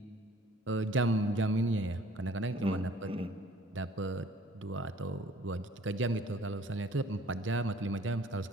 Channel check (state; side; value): normal; both; correlation 0.54